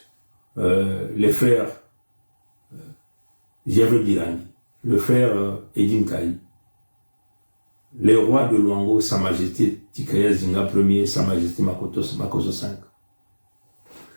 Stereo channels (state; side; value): inverted; both; correlation -1.00